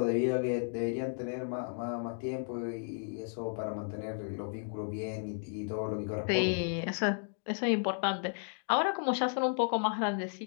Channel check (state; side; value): silent; right; 55 dB below the other